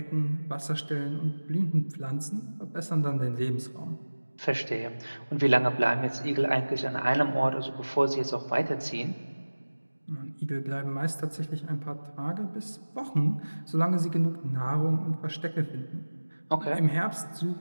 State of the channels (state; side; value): inverted; both; correlation -1.00